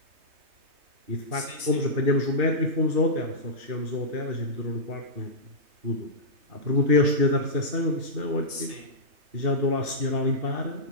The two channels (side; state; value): left; late; 3.2 ms